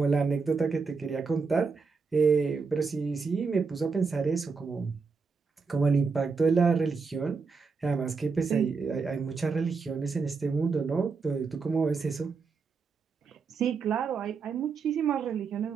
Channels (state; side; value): quieter; left; 4.9 dB